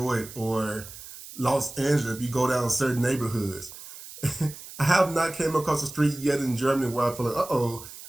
or Los Angeles if you go down certain neighborhoods. I have not came across a street yet in Germany where I feel like, uh-oh,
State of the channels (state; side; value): noise; right; hiss, 15 dB below the sound